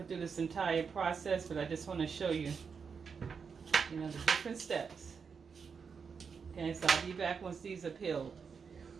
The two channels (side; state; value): left; quieter; 5.9 dB